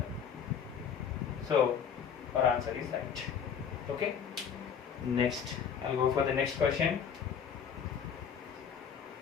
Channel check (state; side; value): quieter; right; 7.4 dB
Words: So our answer is right. Okay. Next, I'll go for the next question.